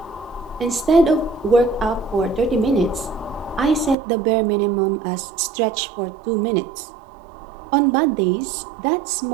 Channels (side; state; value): left; drops out; at 4.0 s